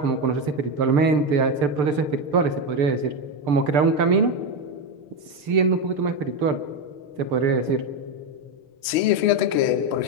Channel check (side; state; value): left; late; 6.7 ms